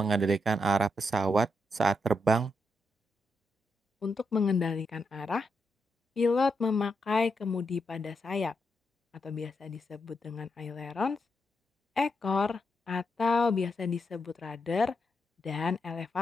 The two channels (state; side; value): normal; both; correlation 0.83